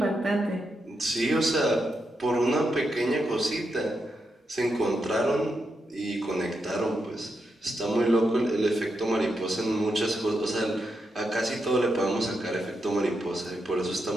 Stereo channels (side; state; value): both; normal; correlation 0.84